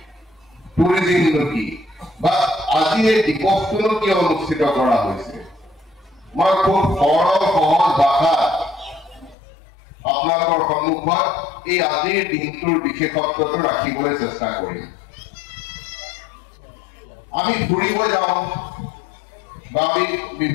টুৰিজিমনো কি, বা আজি এই দিৱসটোনো কিয় অনুষ্ঠিত কৰা হৈছে। মই খুব সৰল সহজ ভাষাত আপোনালোকৰ সন্মুখত এই আজিৰ দিনটোৰ বিশেষত্বটো ৰাখিবলৈ চেষ্টা কৰিম। আমি ফুৰিব যাওঁ বা আমি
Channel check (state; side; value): drops out; right; at 9.3 s